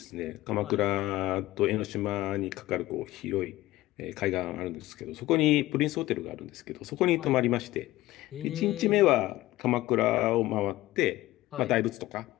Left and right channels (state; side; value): quieter; right; 17.2 dB